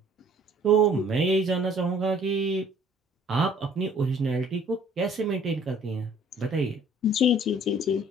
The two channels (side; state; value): both; normal; correlation 0.55